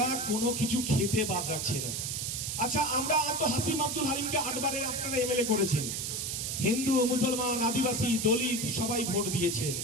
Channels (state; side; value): noise; right; hiss, 2 dB below the sound